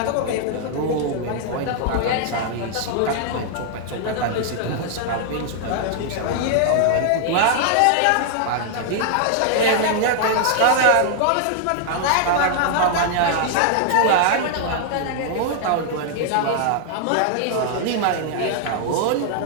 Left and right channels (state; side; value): different; both; correlation -0.01